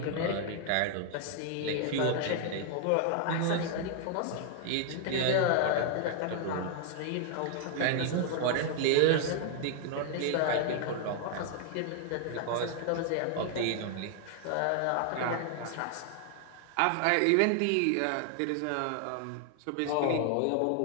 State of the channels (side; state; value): both; different; correlation 0.00